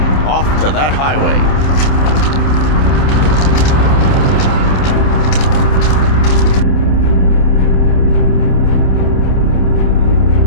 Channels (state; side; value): late; right; 27 ms